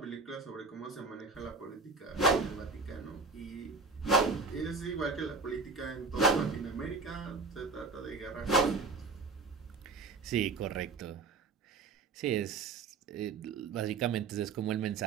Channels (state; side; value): quieter; left; 4.1 dB